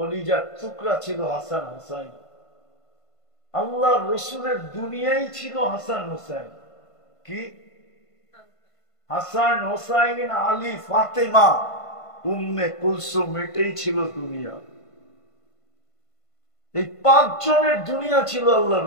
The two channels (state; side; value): late; right; 1.5 ms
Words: টুকরা ছিল হাসান হোসাইন। আল্লাহ রসুলের দুনিয়াই ছিল হাসান হোসেন। কি হাসান হোসাইন, আলী, ফাতেমা, উম্মে কুলসুম, এটাই ছিল দুনিয়া। এই 5 জনের দুনিয়া ছিল আল্লাহ